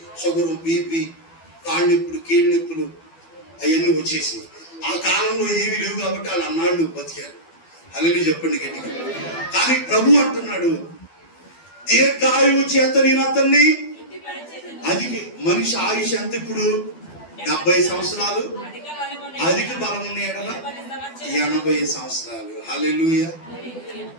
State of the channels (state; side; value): late; right; 12 ms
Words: షుగరు, బీపీ, కాళ్ళు నొప్పులు, కీళ్ళ నొప్పులు అవన్నీ వచ్చేసి ఆ కాలంలో ఏమీ లేవు కాబట్టి వాళ్ళు అన్నాళ్ళు బతికారు. అలాగే చెప్పండి గట్టిగా. కానీ ప్రభు అంటున్నాడు దీర్ఘాయువు చేత నేను అతన్ని. అది మనిషి ఆయుష్ ఎంత ఇప్పుడు? 70 సంవత్సరాలు, అధిక బలం ఉన్న ఎడల 80 సంవత్సరాలు. హల్లెలూయా.